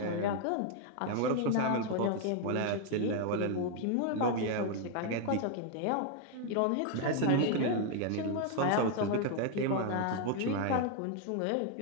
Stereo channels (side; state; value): both; different; correlation 0.00